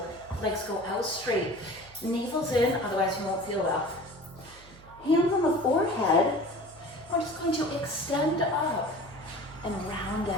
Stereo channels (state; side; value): noise; right; hum, 22 dB below the sound